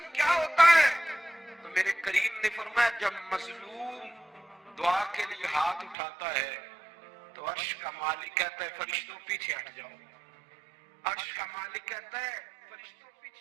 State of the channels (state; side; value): drops out; left; at 6.0 s